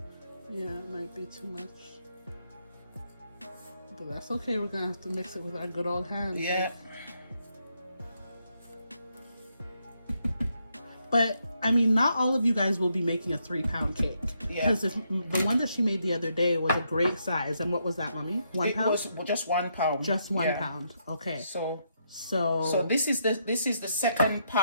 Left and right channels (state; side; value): inverted; both; correlation -0.77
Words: Yeah, it might be too much. But that's okay. We're gonna have to mix it with our good old hands. Yeah. But I mean, not all of you guys will be making a 3-pound cake. Yeah. Because the one that she made the other day was a great size. And what was that, Mommy? 1 pound? It was just 1 pound. Just 1 pound. Okay. So this is the second